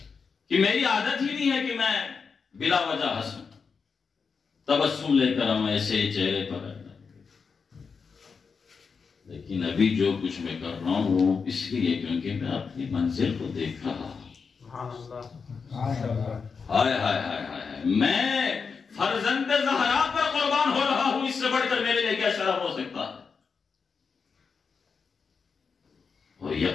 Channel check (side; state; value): right; quieter; 5.4 dB